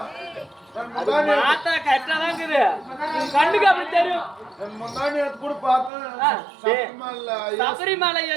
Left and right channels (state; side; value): drops out; left; at 5.9 s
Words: மாத்தா கரெக்டா தான் இருக்குது, கண்ணுக்கு அப்படி தெரியும். கூட பார்த்தேன். சபரிமலை